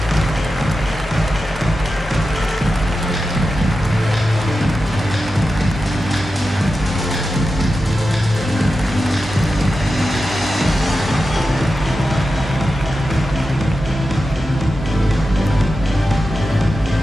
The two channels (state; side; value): normal; both; correlation 0.91